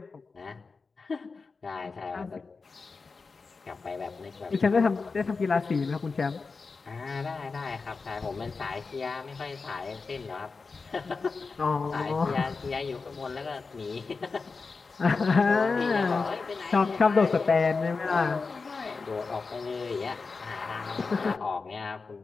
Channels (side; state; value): right; quieter; 4.4 dB